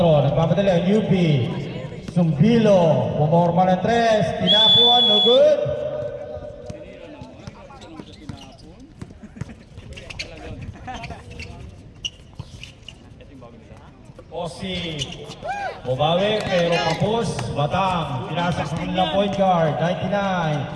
Nagpapadali ang UP. Sumbilo. Pumorma ng 3. Tinapuan. No good. Osi. Bumawi pero kapos. Batang. Pinasa sa kanilang point guard.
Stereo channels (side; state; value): both; identical; correlation 1.00